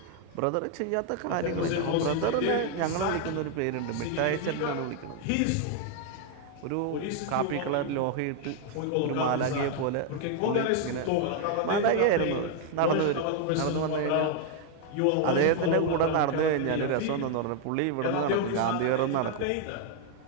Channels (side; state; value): both; different; correlation 0.00